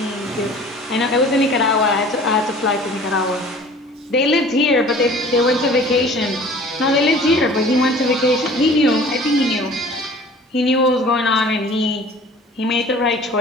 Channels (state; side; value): normal; both; correlation 0.47